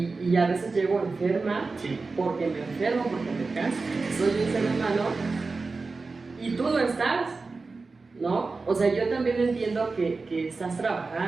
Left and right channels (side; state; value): left; quieter; 4.0 dB